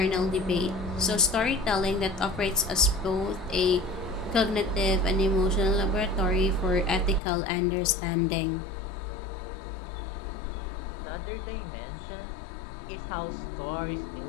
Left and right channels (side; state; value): right; drops out; at 7.2 s